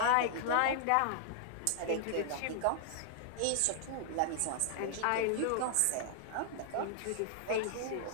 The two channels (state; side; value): different; both; correlation -0.01